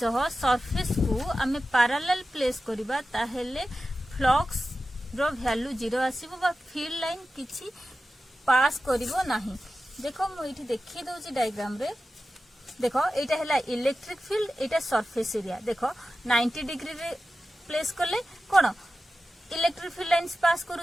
सरफेस को हमें पैरेलल प्लेस करबा ताहेले फ्लक्स रो वैल्यू 0 आसीबो बा फील्ड लाइन किछि पास करिवो नाही देखो मु इठी देखि दोची डायग्राम रे देखो एटा हला इलेक्ट्रिक फील्ड एटा सरफेस एरिया देखो 90 डिग्री रे प्लेस करले कोन इलेक्ट्रिक फील्ड लाइन्स पास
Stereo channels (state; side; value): normal; both; correlation 0.93